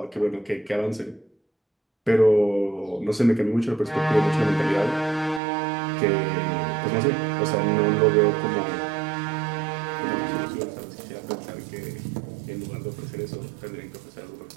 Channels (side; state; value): left; drops out; at 5.4 s